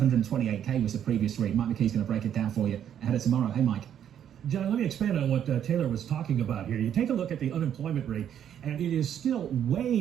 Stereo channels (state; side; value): quieter; left; 9.6 dB